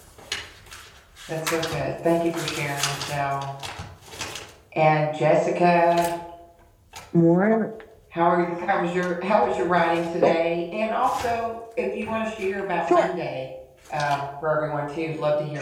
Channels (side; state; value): both; identical; correlation 1.00